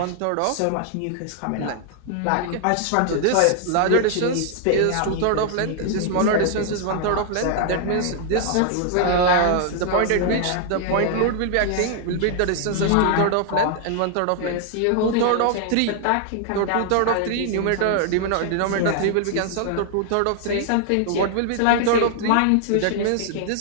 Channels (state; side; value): different; both; correlation 0.00